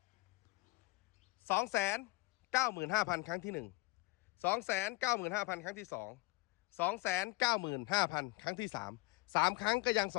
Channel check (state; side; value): quieter; right; 23.2 dB